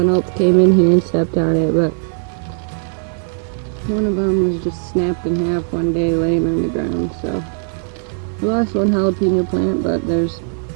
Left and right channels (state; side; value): silent; left; 61 dB below the other